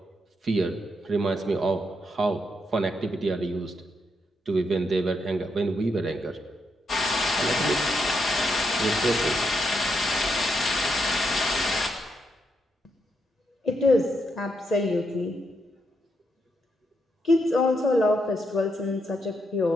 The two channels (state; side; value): normal; both; correlation 0.80